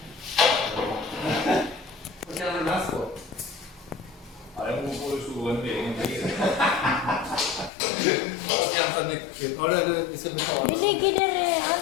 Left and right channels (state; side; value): drops out; right; at 7.7 s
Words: Vad kan det mest på? Ja, det beror på hur stor en egen bil. Har du vi ska betala? Det ligger där